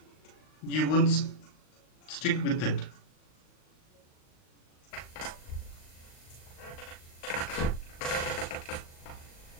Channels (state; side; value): late; right; 38 ms